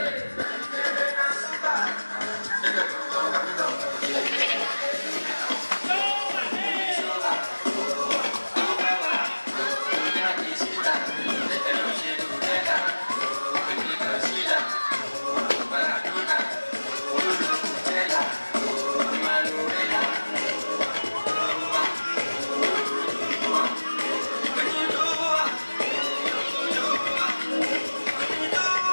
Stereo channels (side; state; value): both; inverted; correlation -1.00